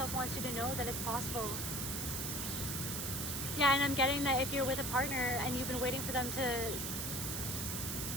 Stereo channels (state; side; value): noise; right; hiss, 2 dB below the sound